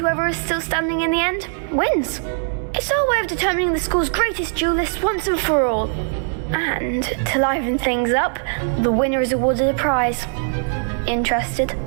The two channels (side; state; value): left; silent; 63 dB below the other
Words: is still standing in the end wins. It's our way of determining the school's greatest duelist once and for all. And to liven things up, the winner is awarded a prize. Interested?